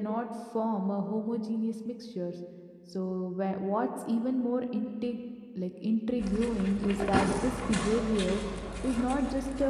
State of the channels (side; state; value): both; identical; correlation 1.00